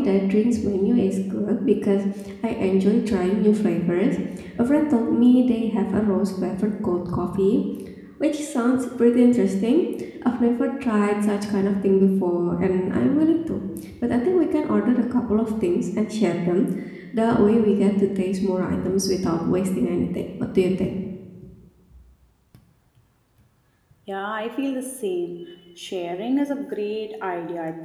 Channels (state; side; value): identical; both; correlation 1.00